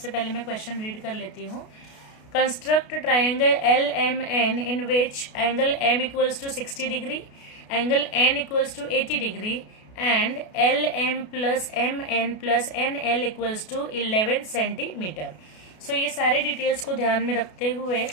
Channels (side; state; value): right; late; 33 ms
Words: पहले मैं क्वेश्चन रीड कर लेती हूँ। Construct triangle LMN in which angle M equals to 60 degree, angle N equals to 80 degree and LM plus MN plus NL equals to 11 centimetre. So ये सारे डिटेल्स को ध्यान में रखते हुए